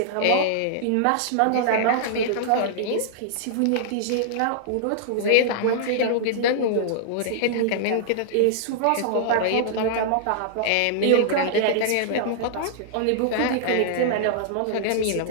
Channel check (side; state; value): both; different; correlation -0.01